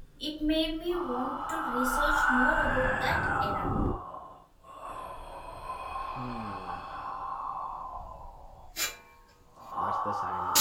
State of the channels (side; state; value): both; identical; correlation 1.00